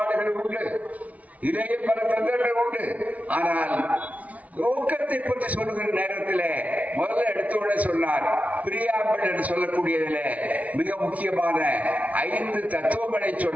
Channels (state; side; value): late; left; 0.069 ms